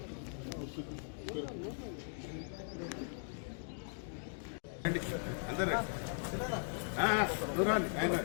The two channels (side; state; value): right; silent; digital silence